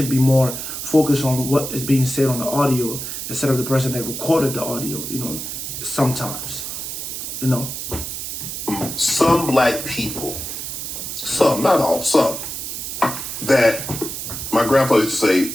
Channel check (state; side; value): noise; right; hiss, 6 dB below the sound